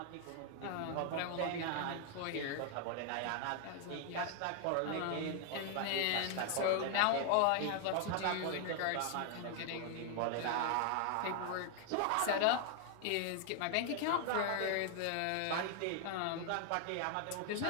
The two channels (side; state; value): both; different; correlation 0.00